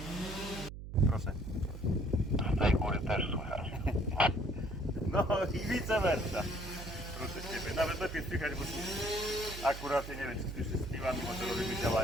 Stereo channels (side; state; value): right; noise; hum, 10 dB below the sound